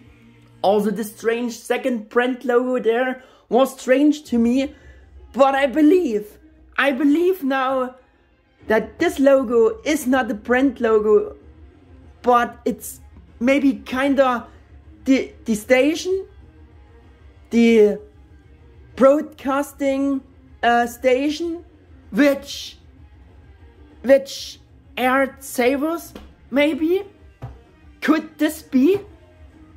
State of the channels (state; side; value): identical; both; correlation 1.00